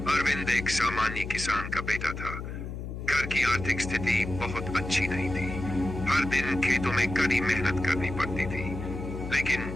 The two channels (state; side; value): noise; left; hum, 7 dB below the sound